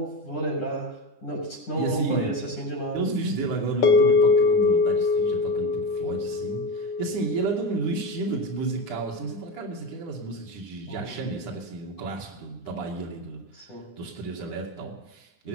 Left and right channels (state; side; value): late; right; 9.9 ms